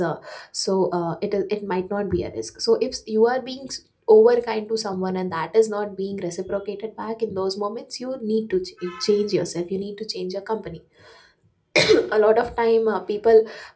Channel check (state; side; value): identical; both; correlation 1.00